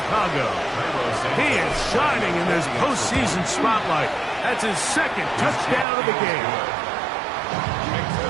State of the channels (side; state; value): left; drops out; at 5.9 s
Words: He is shining in this postseason spotlight. That's his second touchdown of the game.